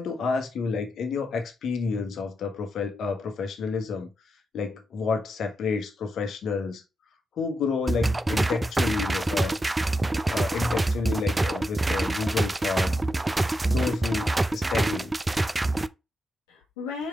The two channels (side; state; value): both; normal; correlation 0.86